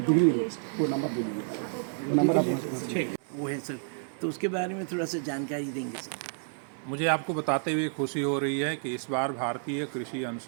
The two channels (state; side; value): silent; left; 58 dB below the other